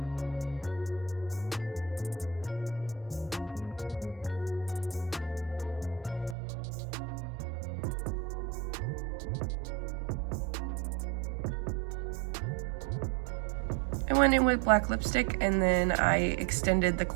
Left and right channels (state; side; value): drops out; left; at 6.4 s